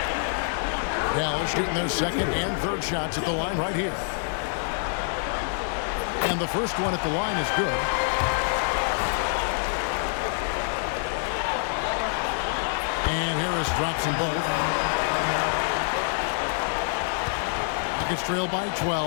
Dallas shooting their second and third shots at the line right here. And the first one at the line is good. And Harris drops them both. Rockets trail by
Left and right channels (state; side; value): silent; right; 61 dB below the other